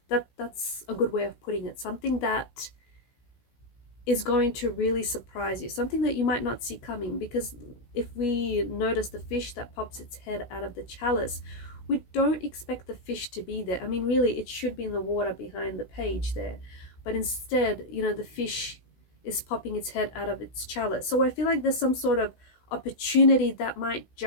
That's a good way of putting it. Something that is going to really surprise you, something that you might not see coming. Because if we notice the fish that pops its head out of the chalice, we don't expect the fish to be there. I mean, really, it should be in the water behind the page there, but instead, the fish is popping its head out of its chalice. So I feel like there's some sort of opportunity that might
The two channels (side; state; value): right; late; 16 ms